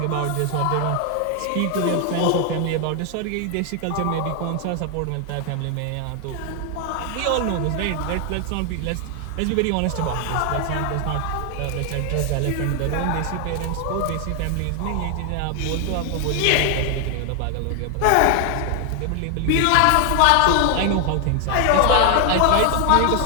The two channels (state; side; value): different; both; correlation 0.00